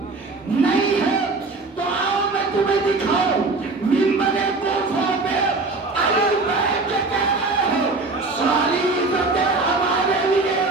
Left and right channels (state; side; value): quieter; left; 3.5 dB